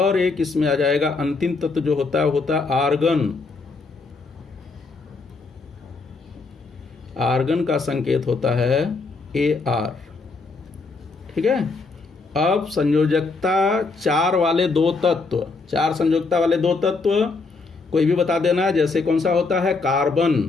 एक इसमें आ जाएगा अंतिम तत्व जो होता है, होता है आर्गन। आर्गन का संकेत होता है Ar। ठीक है। अब संयोजकता 4 वाले 2 तत्व, 4 संयोजकता वाले 2 तत्व कोई भी बता देना। जैसे कौन सा होता है? कार्बन।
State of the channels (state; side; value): quieter; right; 4.0 dB